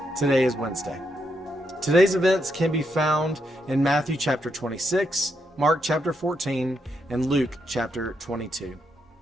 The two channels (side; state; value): both; normal; correlation 0.80